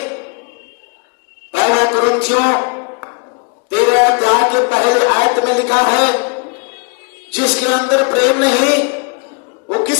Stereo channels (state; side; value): quieter; right; 33.4 dB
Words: पहले कुरिन्थियों 13 अध्याय के पहले आयत में लिखा है, जिसके अंदर प्रेम नहीं, वो